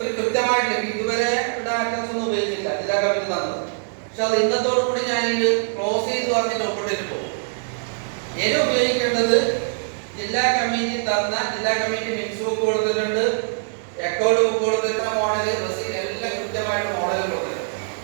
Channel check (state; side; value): silent; left; digital silence